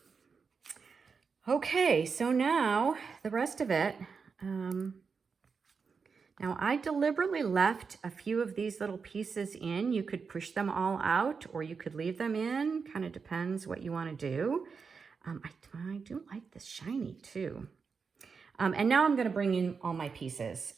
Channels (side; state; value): left; quieter; 5.4 dB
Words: Okay, so now the rest of it. Now I deliberately left a few of these little pieces in. You could push them all out or you could leave them in. Kind of depends what you want to do. I do like this shiny too. And now I'm going to bring in all my pieces